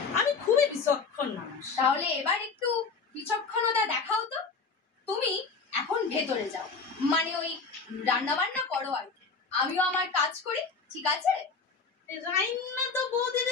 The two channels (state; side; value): quieter; right; 4.7 dB